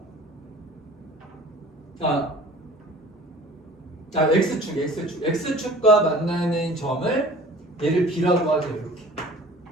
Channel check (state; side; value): normal; both; correlation 0.46